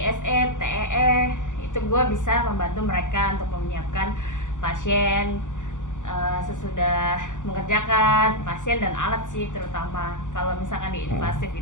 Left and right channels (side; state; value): right; late; 0.86 ms